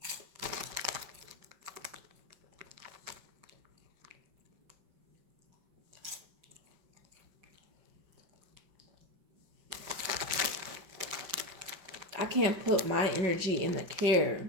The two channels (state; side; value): late; left; 5.1 ms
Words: I can't put my energy in the care